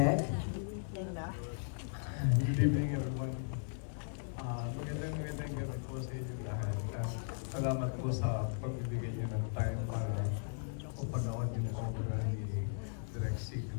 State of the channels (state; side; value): silent; right; digital silence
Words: Good evening, everyone. Magandang gabi po sa inyo lahat. Salamat po sa pagbibigay niyo ng time para upanood yung obra ni Direk